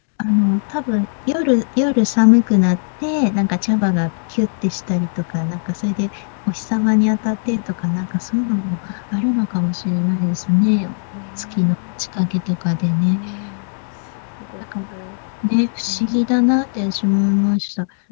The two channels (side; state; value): right; silent; digital silence